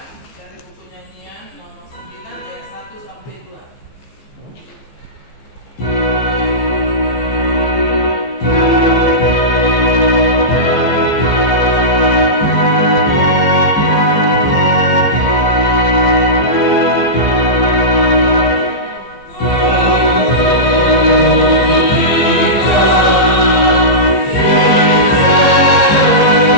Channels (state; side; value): late; right; 15 ms